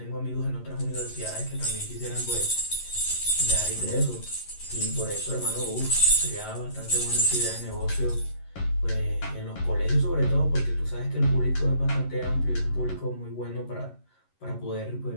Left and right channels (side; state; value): right; late; 11 ms